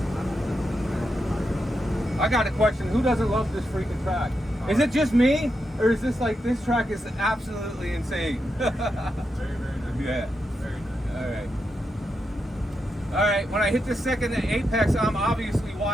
I got a question. Who doesn't love this freaking track? Is it just me? Or is this like, this track is absolutely insane? Very, very nice. Yeah. Very nice. All right, when I hit the second apex, I'm obviously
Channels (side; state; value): both; normal; correlation 0.85